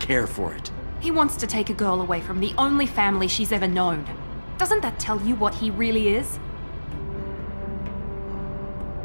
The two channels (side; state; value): both; inverted; correlation -1.00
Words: for it. He wants to take a girl away from the only family she's ever known. Doesn't that tell you what he really is?